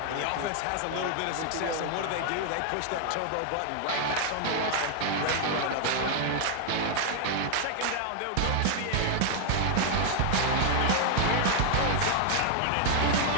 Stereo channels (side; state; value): both; different; correlation 0.00